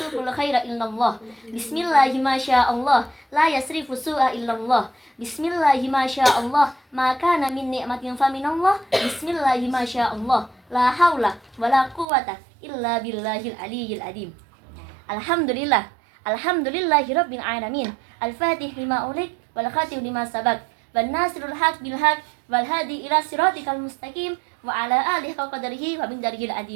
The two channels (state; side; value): drops out; left; at 12.1 s